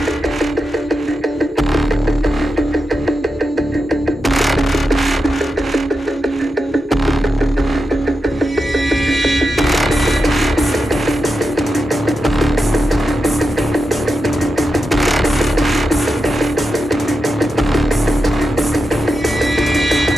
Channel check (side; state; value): both; normal; correlation 0.88